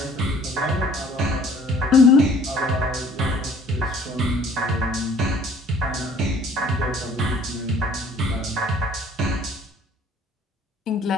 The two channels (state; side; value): normal; both; correlation 0.54